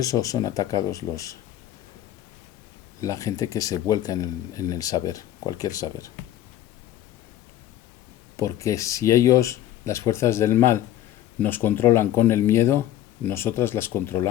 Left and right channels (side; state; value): right; quieter; 12.6 dB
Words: son atacados la gente que se vuelca en el saber, cualquier saber. Porque si ellos, las fuerzas del mal, nos controlan con el miedo, nosotras las